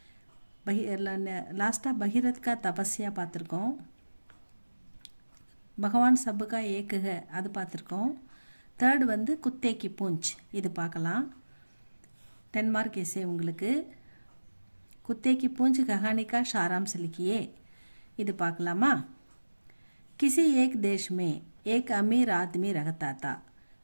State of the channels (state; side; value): inverted; both; correlation -1.00